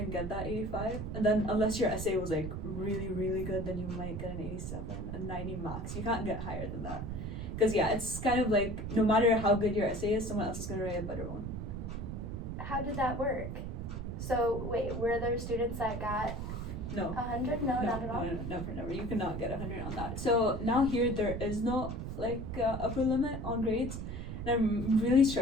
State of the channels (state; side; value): noise; right; rumble, 5 dB below the sound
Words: get that 85, and then unless your essay was like really really good, then you might get an 87, a 90 max. You can't get higher than that, because yeah, it's kind of like no matter how good your essay is, someone else is gonna write a better one. How did that work? So wait, were there students that got No. 100? No, not at all. No, never. You cannot get 100 on that. So now here there is no like upper limit on grades. And I'm really